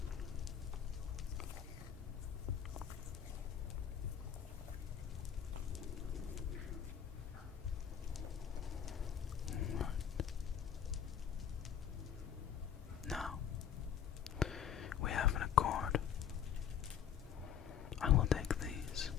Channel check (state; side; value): quieter; right; 8.8 dB